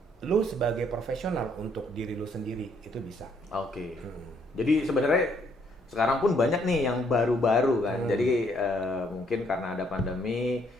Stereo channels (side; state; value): both; normal; correlation 0.68